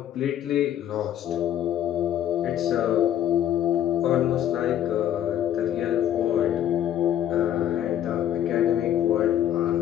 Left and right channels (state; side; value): quieter; right; 10.9 dB